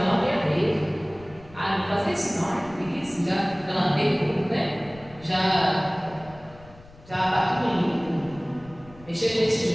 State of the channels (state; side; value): noise; left; rumble, 22 dB below the sound